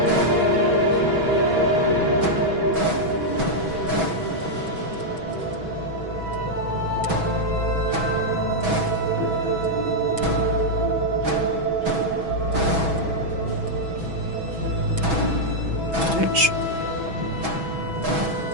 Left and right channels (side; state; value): left; late; 6.1 ms